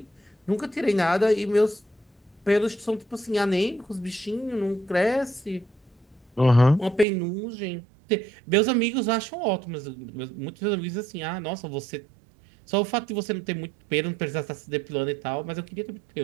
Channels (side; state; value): left; drops out; at 7.1 s